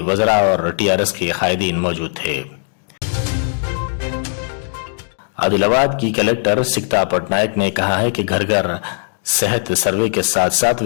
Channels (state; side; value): silent; right; digital silence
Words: وزراء اور TRS کے قائدین موجود تھے۔ عادل آباد کی کلکٹر سکتا پٹنائک نے کہا ہے کہ گھر گھر صحت سروے کے ساتھ ساتھ